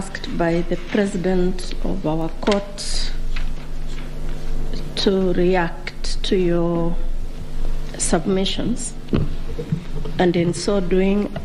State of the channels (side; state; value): both; identical; correlation 1.00